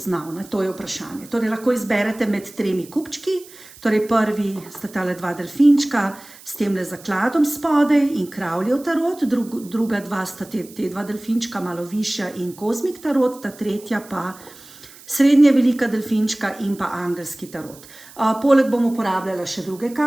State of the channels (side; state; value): right; noise; hiss, 21 dB below the sound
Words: To je vprašanje. Torej lahko izberete med 3 kupčki, torej prvi sta tale 2 delfinčka s temle zakladom spodaj in kravljev tarot, druga 2 sta te 2 delfinčka malo višja in kozmik tarot, ta tretja pa srednje velika delfinčka in pa angelski tarot. Poleg bom uporabljala še druge